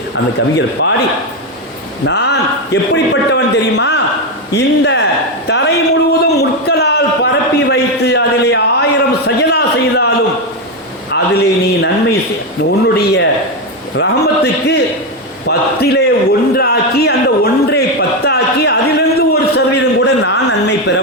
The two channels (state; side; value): normal; both; correlation 0.08